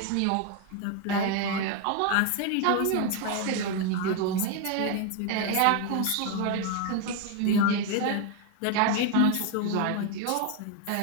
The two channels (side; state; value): both; different; correlation 0.01